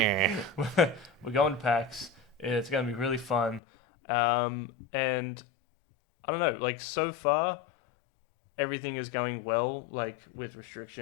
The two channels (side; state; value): right; drops out; at 3.6 s